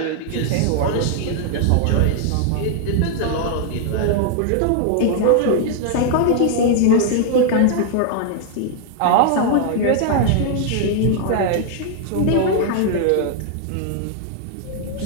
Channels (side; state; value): both; different; correlation 0.00